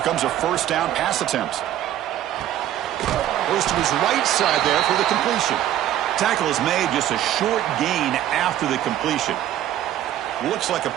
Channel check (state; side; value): quieter; left; 12.2 dB